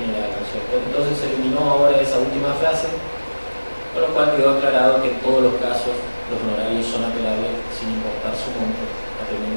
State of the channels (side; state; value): both; inverted; correlation -1.00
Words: ¿no es cierto? Entonces se eliminó ahora esa última frase, con lo cual quedó aclarado que en todos los casos los honorarios son apelables sin importar su monto,